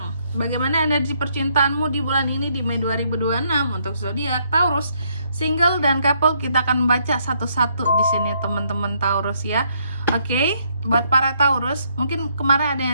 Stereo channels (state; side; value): inverted; both; correlation -0.72